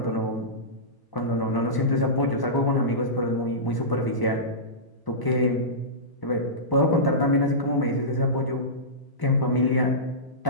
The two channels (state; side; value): late; right; 1.0 ms